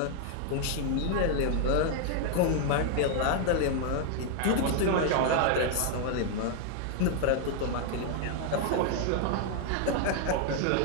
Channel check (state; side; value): different; both; correlation 0.00